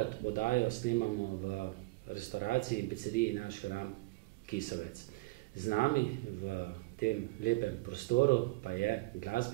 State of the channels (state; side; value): quieter; left; 22.2 dB